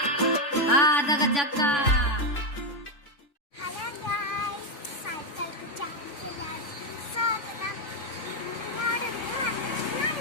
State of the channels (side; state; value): right; late; 3.5 ms